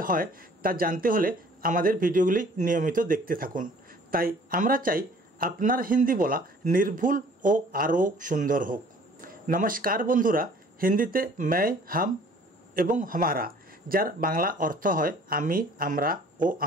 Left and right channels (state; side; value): normal; both; correlation 0.53